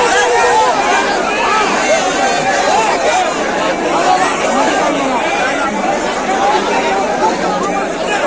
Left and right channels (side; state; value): both; identical; correlation 1.00